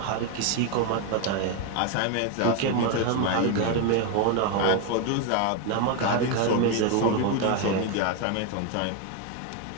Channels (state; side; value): different; both; correlation 0.01